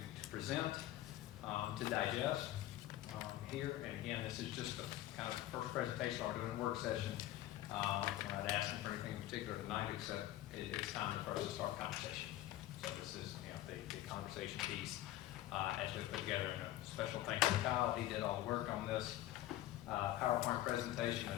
present, to digest here. And again, this is just the kind of first presentation. We're doing a work session. We're not asking for anything in particular tonight, except it's time for us to start conversation. So this is, the conversation piece as we put together. And a special thanks to Kyle. He did all the work on this PowerPoint presentation.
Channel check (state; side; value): quieter; right; 14.5 dB